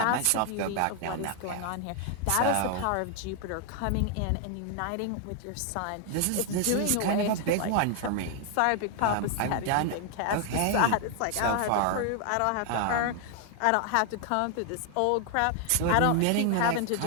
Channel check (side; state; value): both; different; correlation 0.00